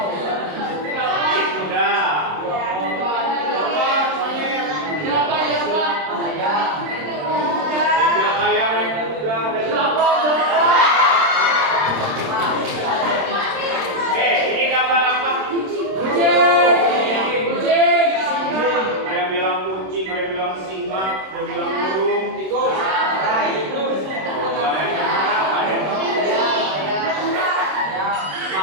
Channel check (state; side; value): late; left; 26 ms